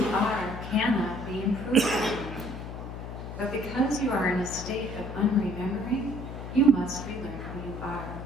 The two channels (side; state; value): left; noise; hum, 9 dB below the sound